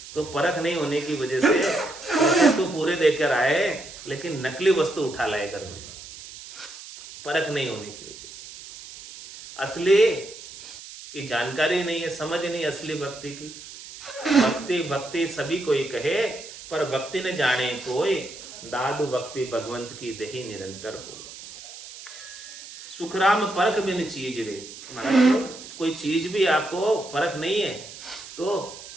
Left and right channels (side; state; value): right; noise; hiss, 15 dB below the sound